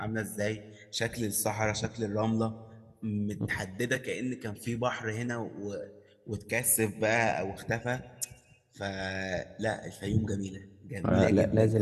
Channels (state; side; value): identical; both; correlation 1.00